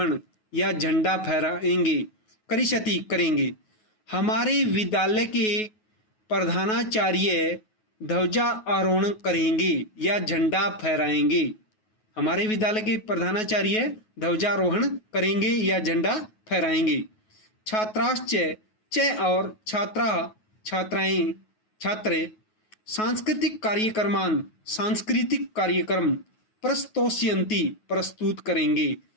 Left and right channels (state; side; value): late; right; 9.3 ms